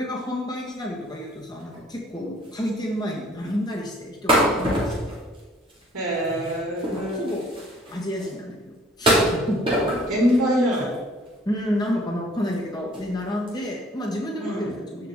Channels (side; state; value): both; normal; correlation 0.57